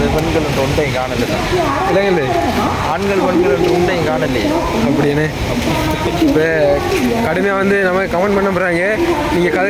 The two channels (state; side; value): identical; both; correlation 1.00